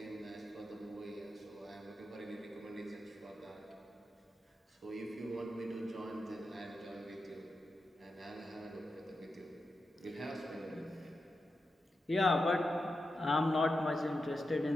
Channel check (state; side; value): normal; both; correlation 0.89